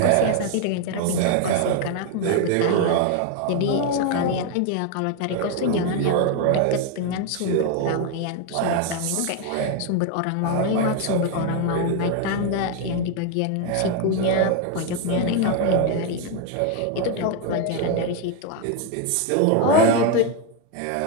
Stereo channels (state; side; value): different; both; correlation 0.01